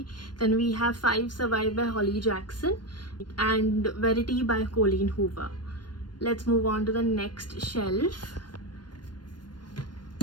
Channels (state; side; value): late; right; 0.71 ms